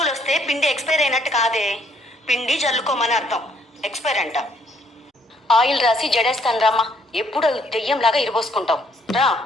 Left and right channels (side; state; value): both; normal; correlation 0.67